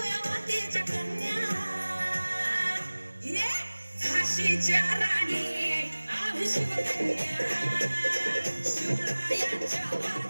मातेच्या कन्या ये झाशीच्या राणी आम्ही शिवकन्या शिवरायांच्या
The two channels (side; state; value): both; inverted; correlation -1.00